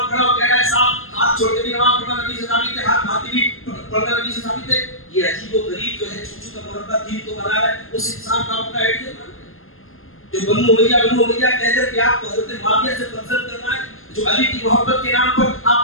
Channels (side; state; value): right; late; 0.60 ms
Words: پڑھا، وہ کہہ رہا ہے صاحب ہاتھ چھوڑ کے بھی نماز پڑھنا نبی سے ثابت ہے، ہاتھ بھاتی بھی پڑھنا نبی سے ثابت ہے. یہ عجیب و غریب جو ہے چھوٹو کا مربع دین تو بنا رہا ہے، اس انسان کا اپنا آئیڈیا مان رہا ہے. جو بنو امیہ کہہ کر کہ آپ کو حضرت معاویہ سے پسند کرنا ہے، جو علی کی محبت کے نام پر